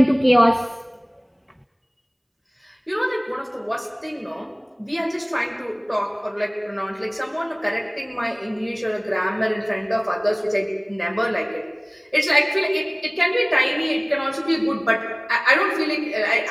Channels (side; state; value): both; identical; correlation 1.00